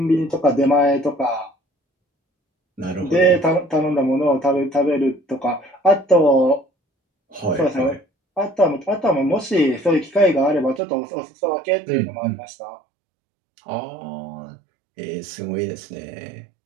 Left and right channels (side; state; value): left; drops out; at 10.8 s